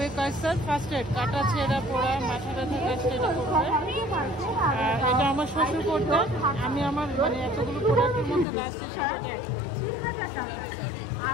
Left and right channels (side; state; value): right; drops out; at 8.5 s